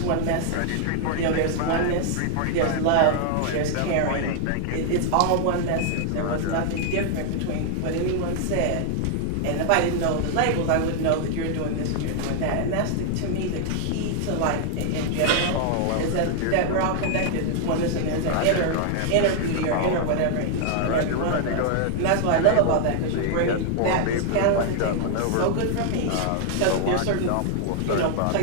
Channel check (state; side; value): different; both; correlation 0.00